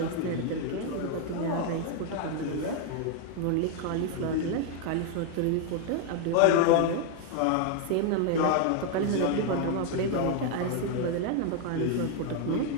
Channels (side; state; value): both; different; correlation 0.01